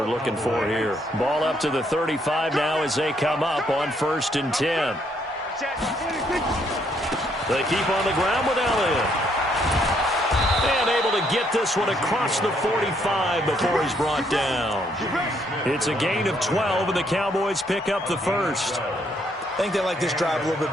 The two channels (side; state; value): both; normal; correlation 0.71